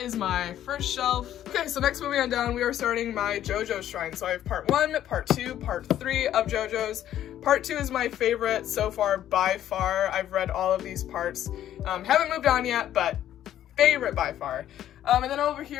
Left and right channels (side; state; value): right; quieter; 11.6 dB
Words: is my first shelf. Okay, so next, moving on down, we are starting my JoJo shrine. So I have part 1, part 2, part 3 of JoJo's. Part 2 is my favorite so far by far. I've read all of these parts. Haven't moved on yet, but favorite by far. And then over